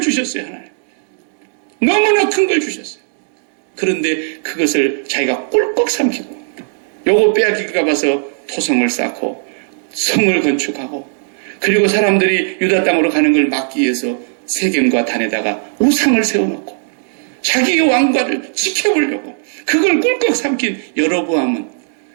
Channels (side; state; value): left; silent; digital silence